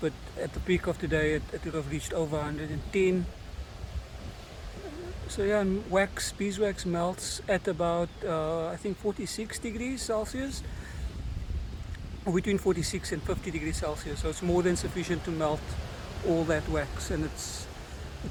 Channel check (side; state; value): both; identical; correlation 1.00